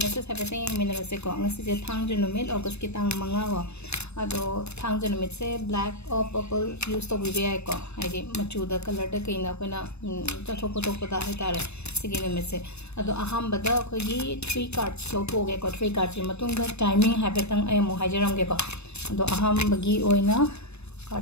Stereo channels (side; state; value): right; late; 0.80 ms